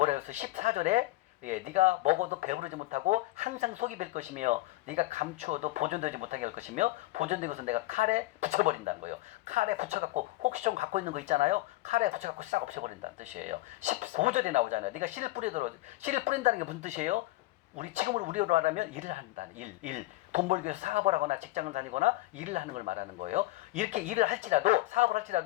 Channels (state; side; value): quieter; right; 18.7 dB